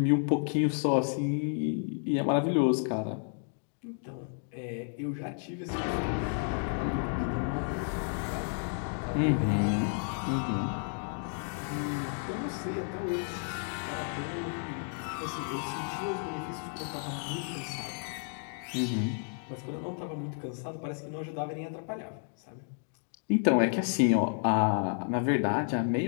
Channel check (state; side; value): silent; right; 57 dB below the other